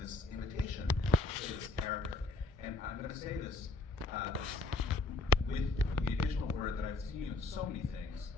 invitation to this character. And I'm going to say this with the additional word that I've seen you in so many things.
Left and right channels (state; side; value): quieter; right; 3.4 dB